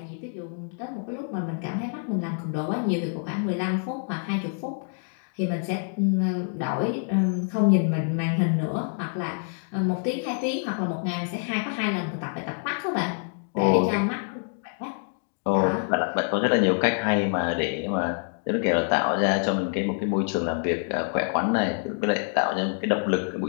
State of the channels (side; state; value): right; silent; 61 dB below the other